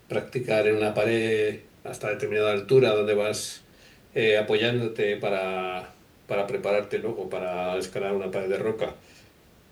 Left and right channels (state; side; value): identical; both; correlation 1.00